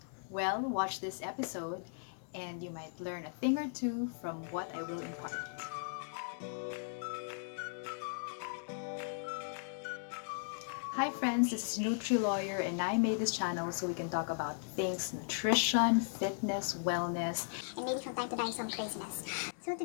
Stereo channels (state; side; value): silent; right; digital silence